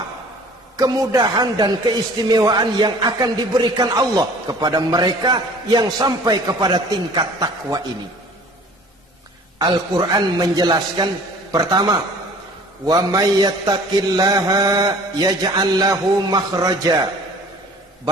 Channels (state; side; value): normal; both; correlation 0.49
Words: kemudahan dan keistimewaan yang akan diberikan Allah kepada mereka yang sampai kepada tingkat takwa ini? Al-Quran menjelaskan, pertama, wa may yattaqillaha yaj'al lahu makhraja.